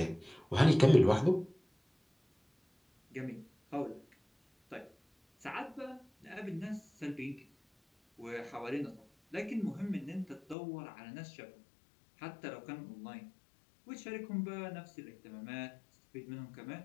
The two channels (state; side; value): drops out; right; at 10.6 s